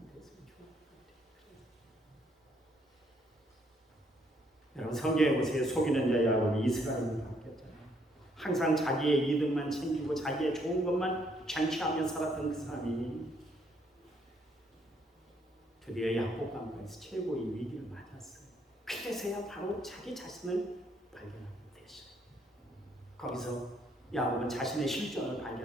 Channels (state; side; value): normal; both; correlation 0.70